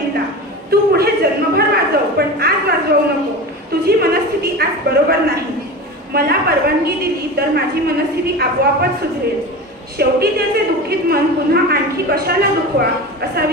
तू पुढे जन्मभर वाजव, पण आज वाजवू नको. तुझी मनस्थिती आज बरोबर नाही. मला परवानगी दिली तर माझी मनस्थिती आपोआपच सुधरेल. शेवटी त्याचे दुःखित मन पुन्हा आणखी कशाला दुखवा असा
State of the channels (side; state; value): both; normal; correlation 0.29